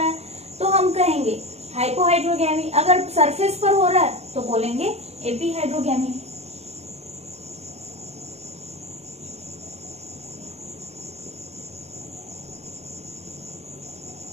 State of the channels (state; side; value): late; left; 0.31 ms